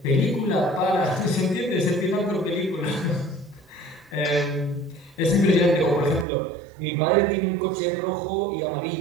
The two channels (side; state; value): left; drops out; at 6.2 s